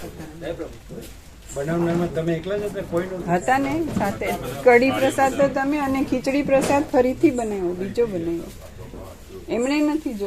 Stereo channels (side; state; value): both; identical; correlation 1.00